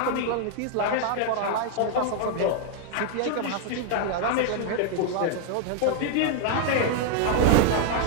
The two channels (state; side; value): different; both; correlation 0.00